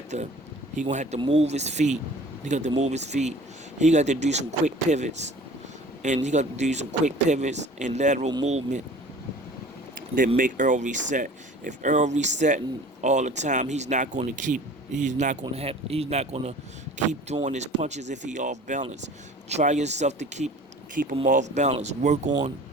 to move his feet. He got to move his feet. He got to do some quick pivots, and lateral movement that make Earl reset. If Earl resetting all the time, he's not going to keep throwing his punches if he off balance. Try yourself to keep him off balance. Work on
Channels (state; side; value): normal; both; correlation 0.46